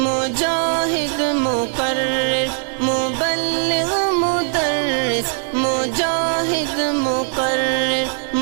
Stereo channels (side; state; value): left; silent; 57 dB below the other